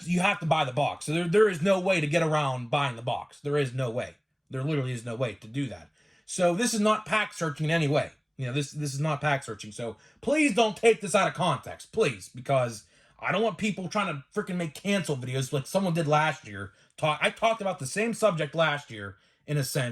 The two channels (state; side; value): identical; both; correlation 1.00